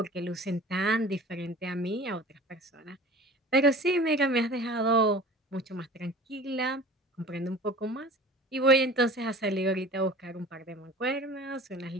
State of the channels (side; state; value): both; normal; correlation 0.42